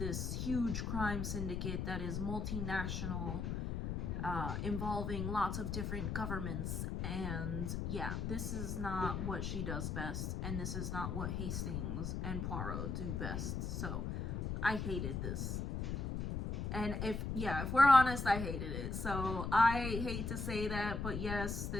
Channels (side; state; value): left; noise; rumble, 2 dB below the sound